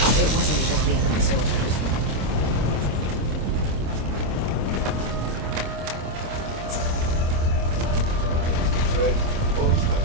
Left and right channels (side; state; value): left; late; 26 ms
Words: It wasn't just the enemy soldiers. Red, pose my